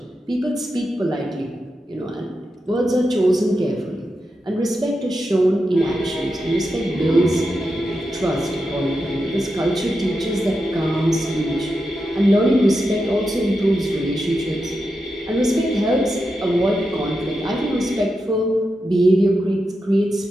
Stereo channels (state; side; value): normal; both; correlation 0.88